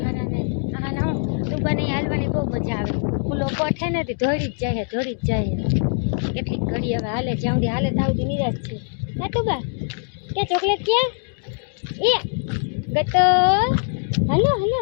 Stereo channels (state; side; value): silent; right; 58 dB below the other